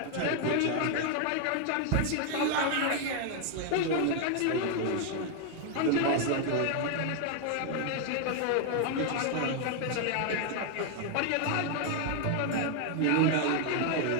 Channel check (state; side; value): different; both; correlation 0.01